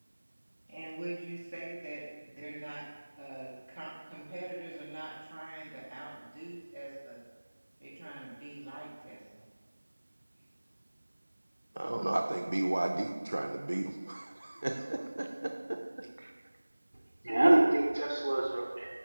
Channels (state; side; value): inverted; both; correlation -1.00